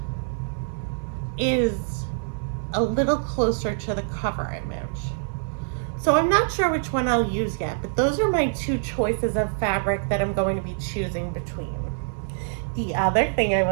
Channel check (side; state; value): left; silent; 62 dB below the other